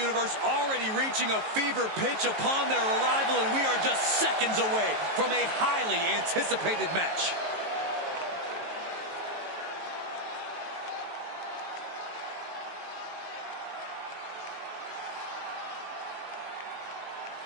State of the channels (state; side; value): late; left; 19 ms